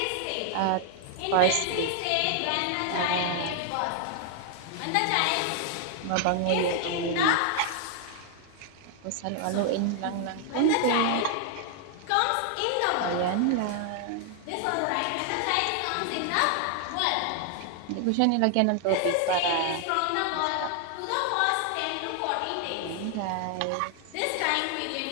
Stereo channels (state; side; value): different; both; correlation 0.00